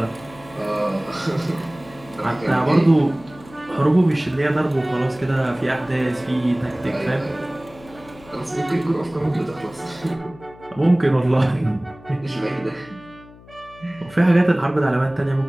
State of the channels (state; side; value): noise; left; hum, 22 dB below the sound